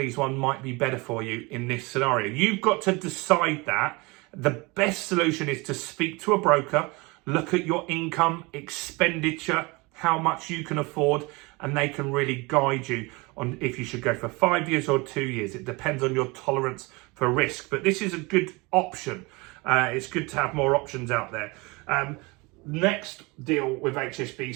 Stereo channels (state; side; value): quieter; left; 25.6 dB